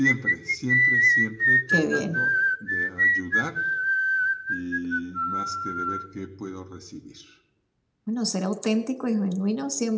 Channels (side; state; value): both; identical; correlation 1.00